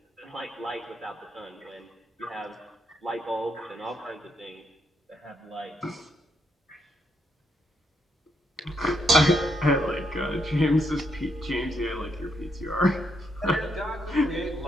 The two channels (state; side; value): normal; both; correlation 0.77